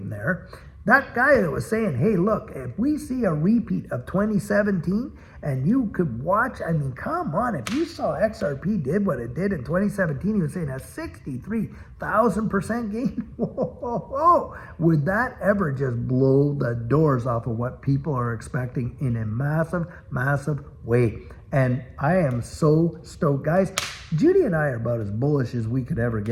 there, that guy that was saying, hey, look, if we see a repeat of 2017 and you could watch, I mean, come on, if you saw XRP did what it did in 2017, he was saying a 63,000% gain. Whoa. Would that ever just blow the doors off of what people are expecting in a massive, massive way? And I am so stoked. Guys, Judy and I are about as bullish as we could ever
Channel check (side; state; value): both; identical; correlation 1.00